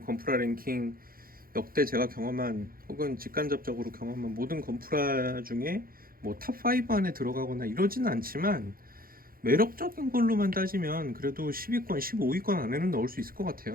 랭킹 역대 제가 경험한 혹은 직간접적으로 경험한 모든 건프라 중에 뭐 탑5 안에 들어가거나 이러지는 않지만 매력적인 걸로만 따지면 그래도 10위권, 15위권 안에는 넣을 수 있을 것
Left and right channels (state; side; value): late; left; 0.42 ms